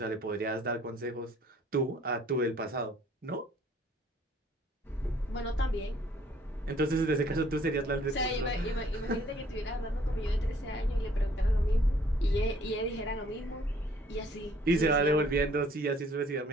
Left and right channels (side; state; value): both; normal; correlation 0.60